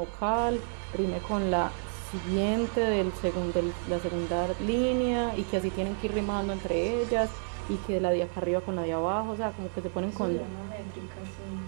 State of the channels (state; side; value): silent; left; digital silence